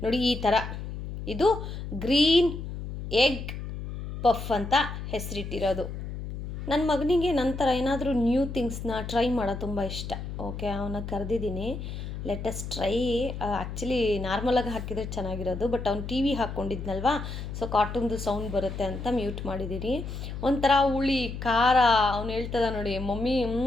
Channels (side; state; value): left; noise; hum, 7 dB below the sound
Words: ನೋಡಿ, ಈ ಥರ ಇದು ಗ್ರೀನ್ ಎಗ್ ಪಫ್ ಅಂತ ಹೆಸರಿಟ್ಟಿರೋದು. ನನ್ನ ಮಗನಿಗೆ ನಂತರ ಏನಾದರೂ ನ್ಯೂ ಥಿಂಗ್ಸ್ನ ಟ್ರೈ ಮಾಡೋದು ತುಂಬ ಇಷ್ಟ. ಓಕೆ, ಅವನ್ನ ಕರೆದಿದ್ದೀನಿ, ಲೆಟಸ್ ಟ್ರೈ. ಆ್ಯಕ್ಚುಲಿ ನಾರ್ಮಲಾಗಿ ಹಾಕಿದರೆ ಚೆನ್ನಾಗಿರೋದು, ಬಟ್ ಅವ್ನು ಟಿ ವಿ ಹಾಕ್ಕೊಂಡಿದ್ನಲ್ವಾ, ಸೊ ಕಾರ್ಟೂನ್ದು ಸೌಂಡ್ ಬರುತ್ತೆ ಅಂತ ಮ್ಯೂಟ್ ಮಾಡಿದ್ದೀನಿ. ಒಂಥರ ಹುಳಿ ಖಾರ, ಅವ್ನು ಹೇಳ್ತದ ನೋಡಿ ಮಮ್ಮಿ